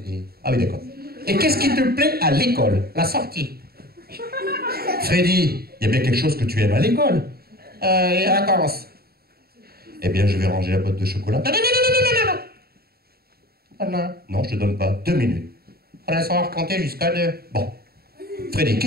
des... Ah oui, d'accord. Et qu'est-ce qui te plaît à l'école? La sortie. Freddy, il y a bien quelque chose que tu aimes à l'école. Les vacances. Eh bien, je vais ranger la boîte de chocolat. Non. Non. Non, je te donne pas. 2 minutes. On va savoir compter jusqu'à 2. Bon. Freddy,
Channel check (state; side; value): late; left; 0.45 ms